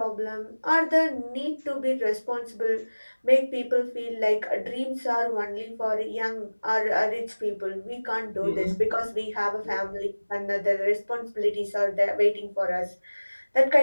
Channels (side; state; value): both; inverted; correlation -1.00